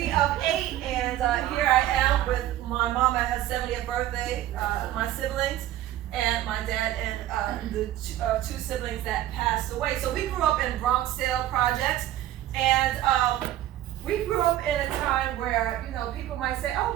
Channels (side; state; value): left; quieter; 13.4 dB